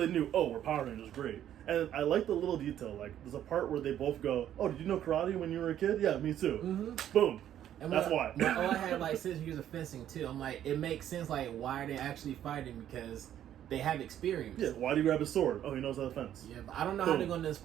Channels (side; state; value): left; quieter; 11.0 dB